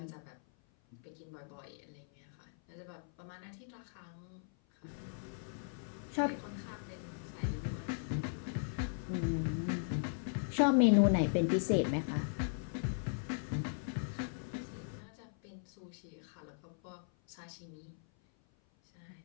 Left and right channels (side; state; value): right; silent; 52 dB below the other